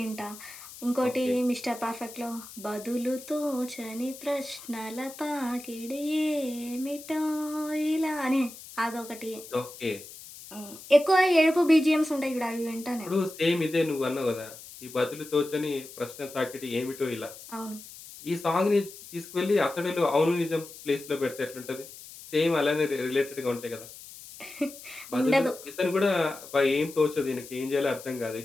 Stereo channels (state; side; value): noise; left; hiss, 16 dB below the sound